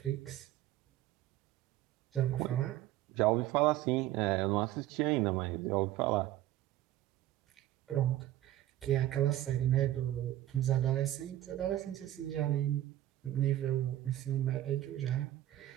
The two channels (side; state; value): left; quieter; 14.0 dB